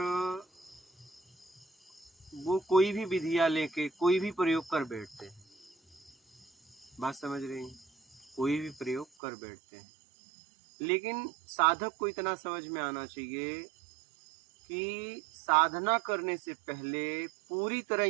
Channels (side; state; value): left; drops out; at 9.1 s